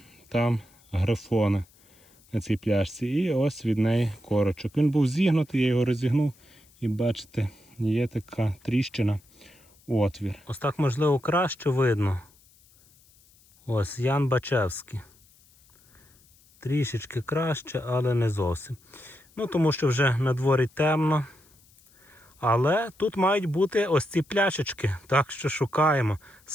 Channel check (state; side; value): noise; left; hiss, 30 dB below the sound